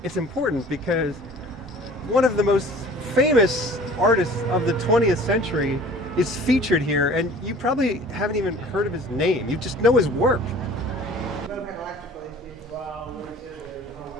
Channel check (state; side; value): normal; both; correlation 0.47